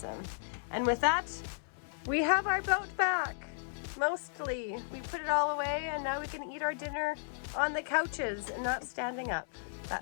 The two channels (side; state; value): right; silent; 55 dB below the other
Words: And with that, we have our boat back. Mostly. We put it all away and now we can eat our dinner on the couches and not standing up.